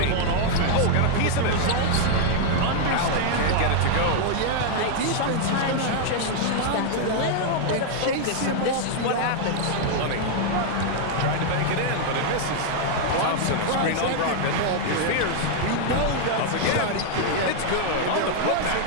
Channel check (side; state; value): both; different; correlation 0.00